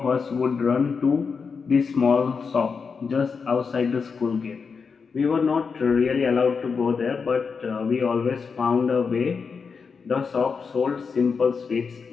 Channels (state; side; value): quieter; right; 5.4 dB